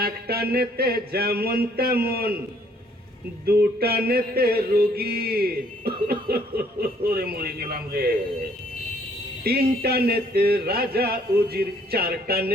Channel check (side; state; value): both; normal; correlation 0.63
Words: একটা নেতে যেমন তেমন, দুটা নেতে রোগী। ওরে মরে গেলাম রে। তিনটা নেতে রাজা উজির, চারটা